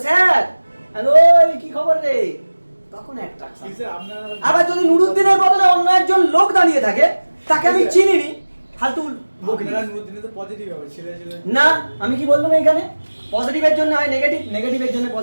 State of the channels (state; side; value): inverted; both; correlation -1.00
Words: স্যার হ্যালো কি খবর রে? তখন অ্যাট্রাকশন। আবার যদি নুরুদ্দিনের বদলে অন্য একজন লোক দাঁড়িয়ে থাকে, তাকে আমি চিনিনি, ফালতু না। আমি কি বললাম? এখানে পজিটিভের জন্য হয় নেগেটিভ, নেগেটিভের জন্য